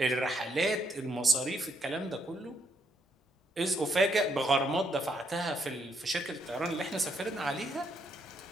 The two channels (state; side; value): normal; both; correlation 0.74